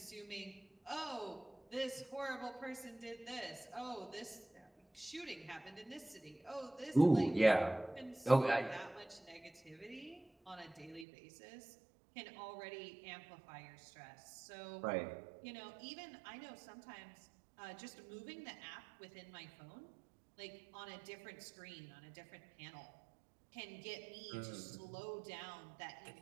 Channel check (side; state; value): left; drops out; at 11.1 s